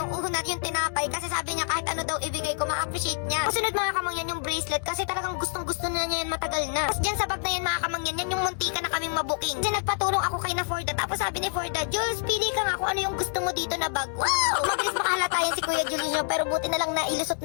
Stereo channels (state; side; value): silent; right; 60 dB below the other